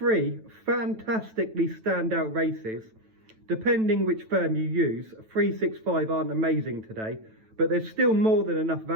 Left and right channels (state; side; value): late; left; 9.1 ms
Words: fantastically standout races. Depending which firm you use, 365 aren't amazing today, but there's still more than enough